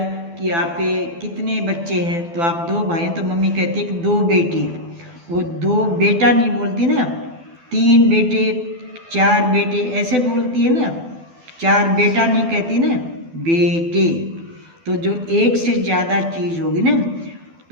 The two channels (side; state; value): left; late; 12 ms